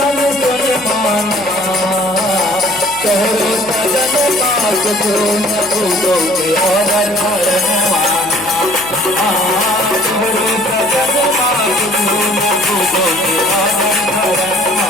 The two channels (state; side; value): noise; right; hum, 21 dB below the sound